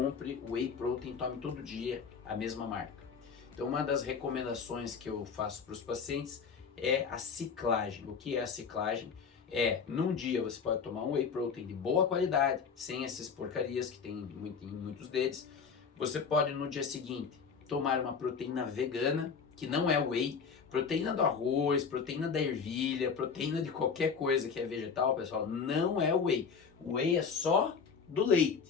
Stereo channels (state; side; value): quieter; right; 5.9 dB